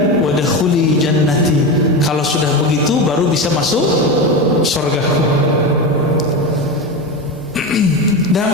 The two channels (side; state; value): both; normal; correlation 0.20